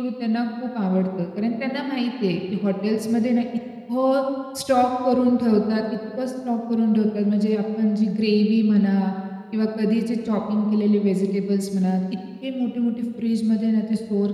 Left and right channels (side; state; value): both; identical; correlation 1.00